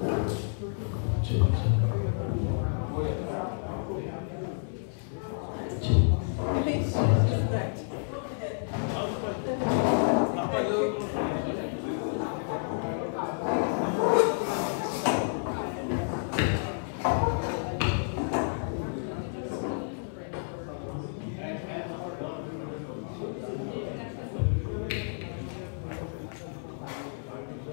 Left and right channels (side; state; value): right; silent; 58 dB below the other